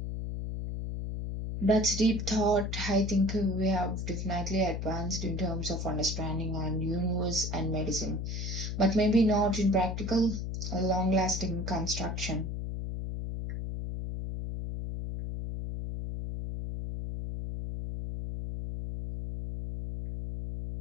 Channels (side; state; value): left; noise; hum, 4 dB below the sound